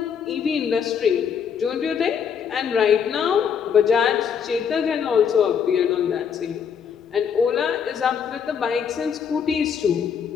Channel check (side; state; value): right; quieter; 7.3 dB